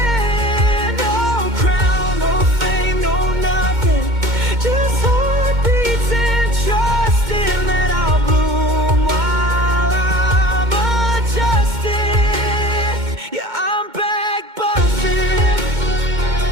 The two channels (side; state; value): left; late; 2.2 ms